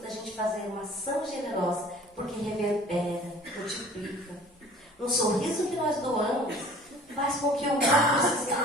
da gente fazer uma ação generosa, porque reverbera, multiplica. Um sorriso que nós doamos faz com que o outro se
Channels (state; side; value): normal; both; correlation 0.47